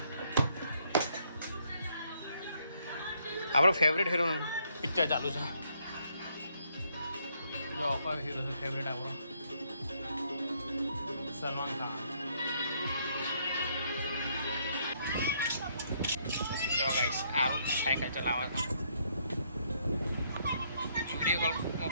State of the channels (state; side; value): inverted; both; correlation -0.71